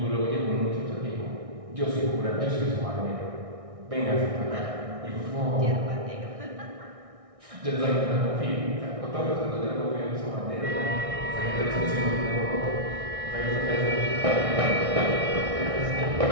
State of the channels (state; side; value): late; left; 1.6 ms